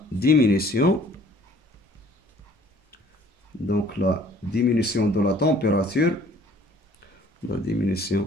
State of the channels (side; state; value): both; normal; correlation 0.55